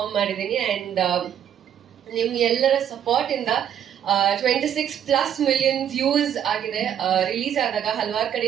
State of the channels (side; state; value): left; quieter; 9.6 dB